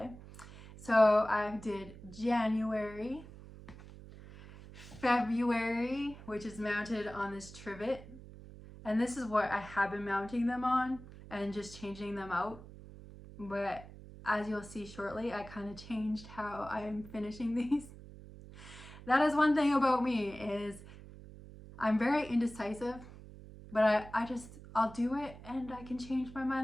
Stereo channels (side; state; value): right; noise; hum, 16 dB below the sound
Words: So I did January, February, which is mounted on this trivet, and this is what I have been mounting them on and just changing them out, but as you'll see shortly, I kind of changed how I'm finishing these. That is one thing about me, is I'm very indecisive, but I'll do it and I can change my